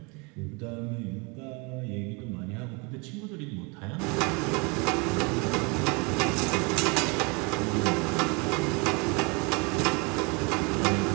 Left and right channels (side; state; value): left; quieter; 30.0 dB